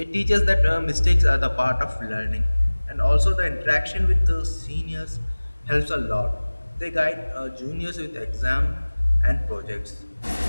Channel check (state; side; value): inverted; both; correlation -1.00